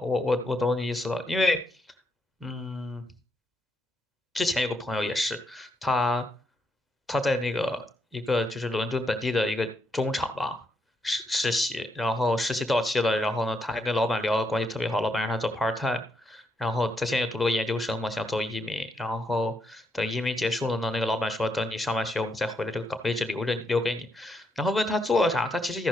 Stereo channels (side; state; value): both; normal; correlation 0.79